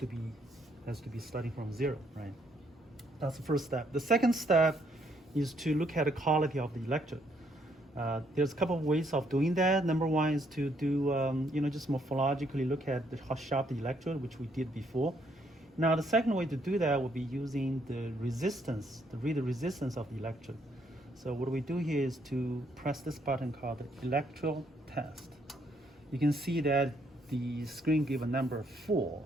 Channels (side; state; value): both; normal; correlation 0.71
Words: be starting from 0, right? That's the first step. The second step is to look at the quality of the electrode. There's a couple of ways of doing that. Number one is to do, just morphologically look at how sharp the electrode, which we did before. Now, the second way to do that would be using the resistance, to read the resistance of the electrode. So what we do here is to press this button called the electrode test. You can see that the screen gives a number 4,